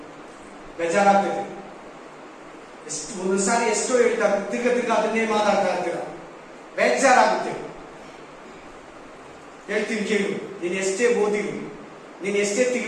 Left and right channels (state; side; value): identical; both; correlation 1.00